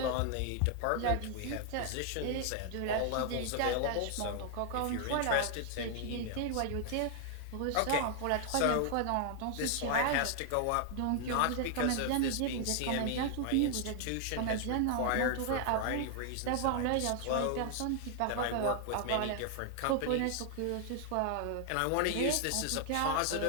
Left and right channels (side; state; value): both; different; correlation 0.00